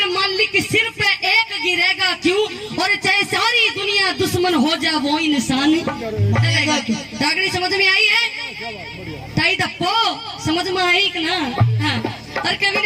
मालिक सिर पे एक गिरेगा क्यों, और चाहे सारी दुनिया दुश्मन हो जा वो इंसान चलेगा क्यों। डागड़ी समझ में आई है? ताई दप्पो समझ में आई कि ना? हाँ। और कवि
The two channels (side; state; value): both; identical; correlation 1.00